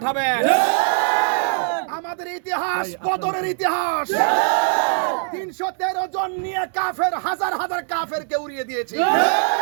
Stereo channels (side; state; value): left; silent; 65 dB below the other